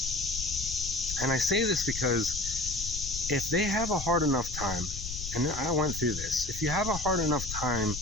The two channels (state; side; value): noise; left; rumble, 8 dB below the sound